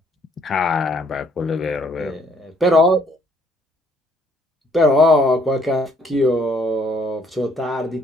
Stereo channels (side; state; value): both; normal; correlation 0.66